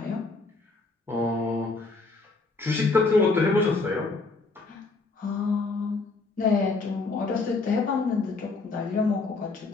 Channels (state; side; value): quieter; right; 3.8 dB